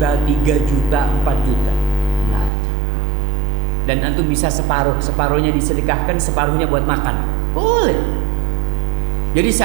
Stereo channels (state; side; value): drops out; left; at 2.5 s